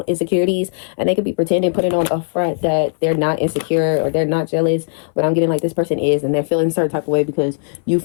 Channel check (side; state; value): right; silent; 61 dB below the other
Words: insecurities, and they could be pretending, putting on a front that they're not insecure or they're not jealous, but I'm getting like this person is, and they're feeling a certain type of way because you